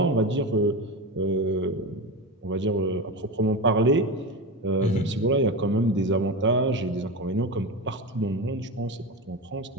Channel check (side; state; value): both; normal; correlation 0.21